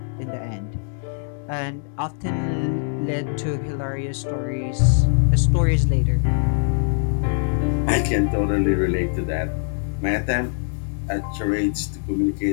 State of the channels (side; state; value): right; silent; 62 dB below the other